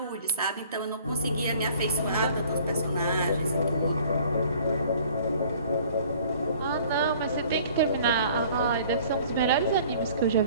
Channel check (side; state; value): both; inverted; correlation -0.52